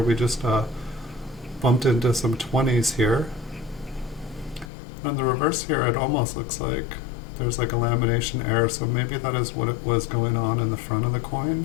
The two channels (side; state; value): right; drops out; at 4.7 s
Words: just bumped into some 20s here. On the reverse here, it almost looks like there's like a lamination error, so maybe that is what it was going on in the front of the coin.